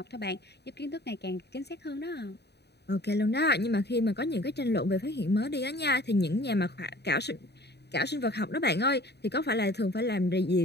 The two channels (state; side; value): late; right; 0.48 ms